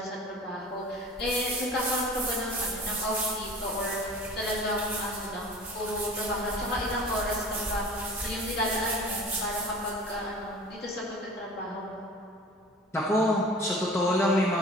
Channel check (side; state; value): both; normal; correlation 0.42